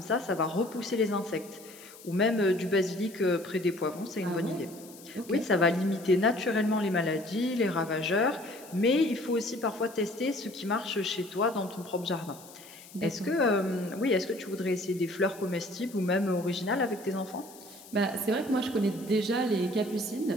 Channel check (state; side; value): noise; left; hiss, 20 dB below the sound